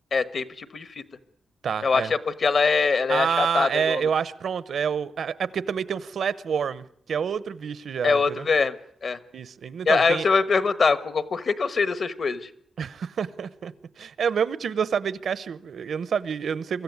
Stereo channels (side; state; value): both; normal; correlation 0.82